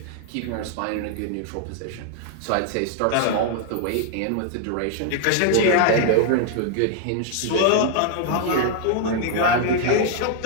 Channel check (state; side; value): different; both; correlation 0.00